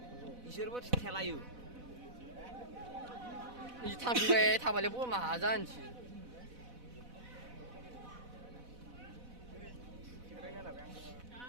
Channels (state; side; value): late; left; 4.1 ms